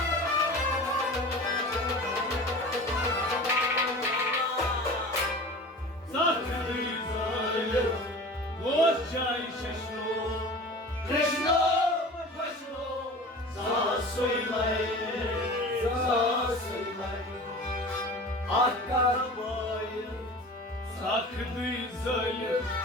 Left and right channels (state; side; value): normal; both; correlation 0.37